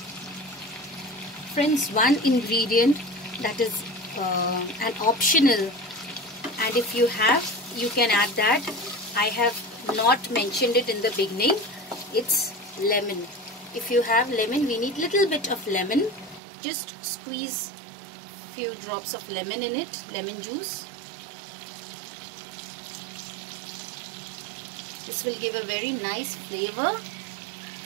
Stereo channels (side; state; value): left; drops out; at 16.4 s